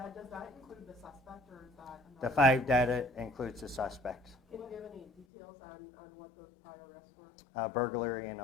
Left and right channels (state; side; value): drops out; right; at 5.2 s